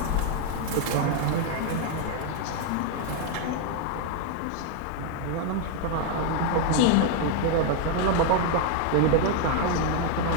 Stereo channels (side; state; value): both; different; correlation 0.00